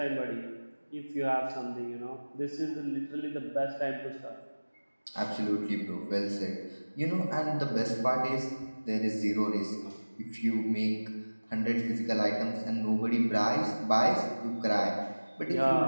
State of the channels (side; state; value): both; inverted; correlation -1.00